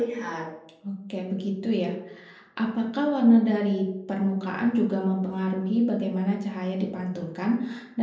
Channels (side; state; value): both; identical; correlation 1.00